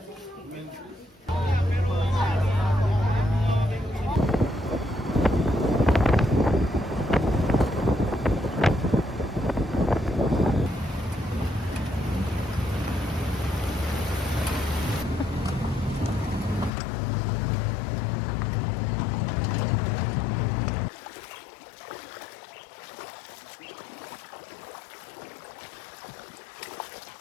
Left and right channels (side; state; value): right; drops out; at 16.7 s